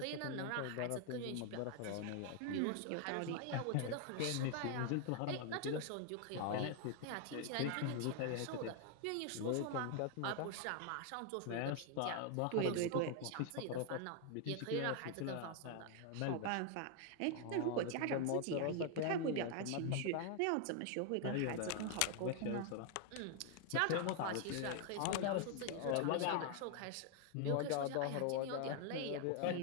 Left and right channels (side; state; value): both; different; correlation 0.00